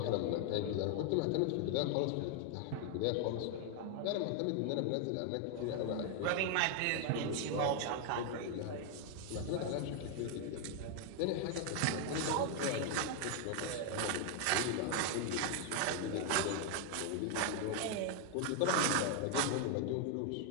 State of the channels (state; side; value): different; both; correlation 0.00